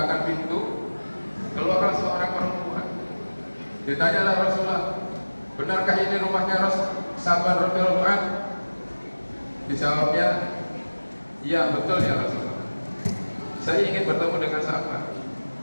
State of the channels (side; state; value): both; inverted; correlation -1.00